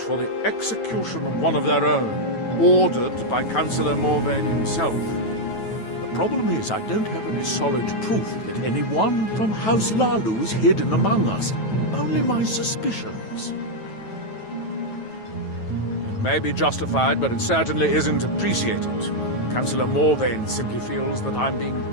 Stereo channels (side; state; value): right; late; 9.2 ms